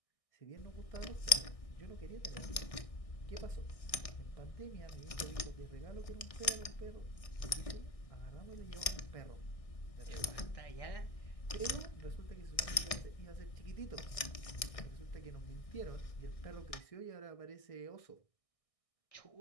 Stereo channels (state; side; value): late; right; 1.6 ms